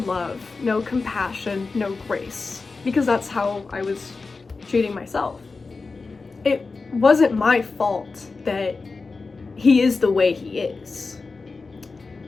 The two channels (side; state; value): right; quieter; 4.1 dB